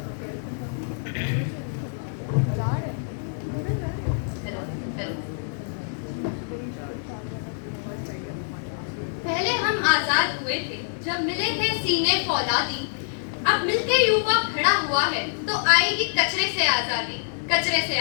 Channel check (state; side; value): silent; right; 61 dB below the other